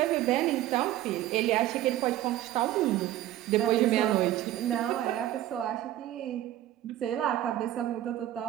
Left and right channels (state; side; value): quieter; left; 13.8 dB